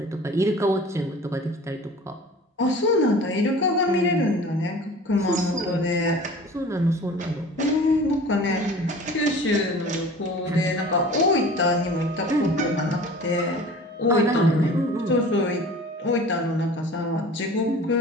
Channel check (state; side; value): normal; both; correlation 0.42